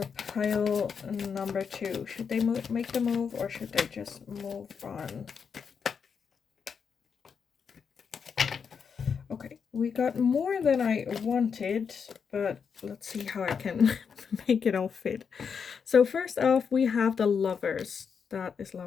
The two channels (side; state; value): right; quieter; 6.4 dB